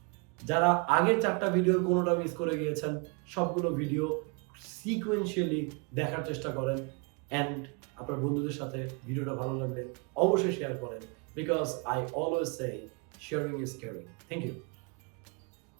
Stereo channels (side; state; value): left; quieter; 33.1 dB